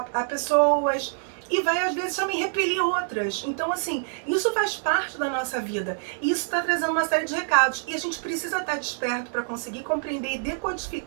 pessoas. E vai, às vezes, também repelir outras. Então, assim, isso faz parte da nossa vida. E isso está trazendo uma série de recados. E a gente precisa estar desperto para conseguir compreender e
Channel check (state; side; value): silent; left; digital silence